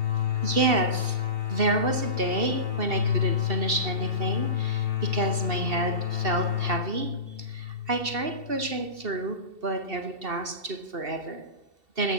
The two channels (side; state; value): left; late; 2.7 ms